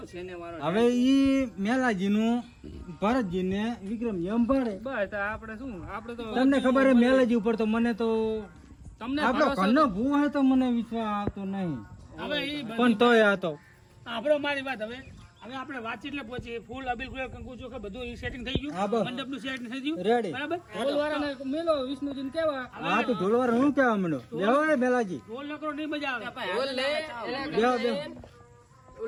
છે ને મારો હવે ઈ મેલાજીનું ભરતજીને વિક્રમજી સંભાળે બસ આપણે શું આપણે તો તમને ખબર હે મેલાજી ઉપર તો મને તો તમને આપણો ઘરનો ભૂ હે તો મને વિશ્વાસ આવતો નહીં હવે ઈ પણ તોય આ તો આપણો મારી વાત હવે આપણે વાતચીત એટલે પહોંચી ફૂલ અબીલ ગુલાલ કંકુ ચોખા બધું ઈ સેટિંગ થઈ હા, ગયું બસ. મંડપનું સેટિંગ થઈ ગયું રેડી બરાબર ઢોલવાળાને મેલો વિષ્ણુજીને કહેવા હા તો ઢોલવાર હું કેવા માંડો લેવો હે મેલાજી ઢોલ નકરો નહીં મજા આવે બોલ લે બેહો, બેહો.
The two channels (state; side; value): identical; both; correlation 1.00